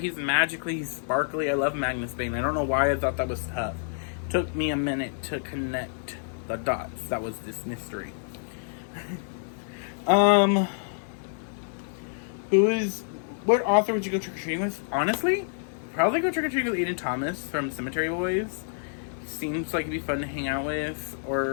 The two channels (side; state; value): right; silent; 57 dB below the other